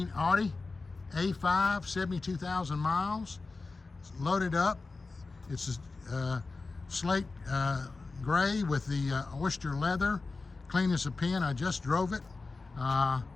Audi A5, 72,000 miles. It's loaded up. It's a slate gray with the oyster leather, clean as a pin. I just drove it.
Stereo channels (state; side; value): quieter; right; 3.8 dB